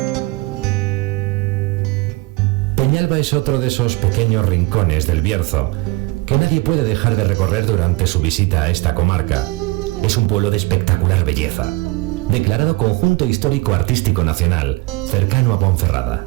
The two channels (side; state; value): left; quieter; 22.4 dB